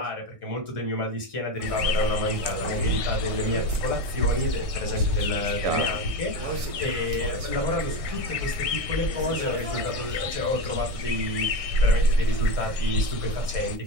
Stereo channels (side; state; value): left; late; 1.6 ms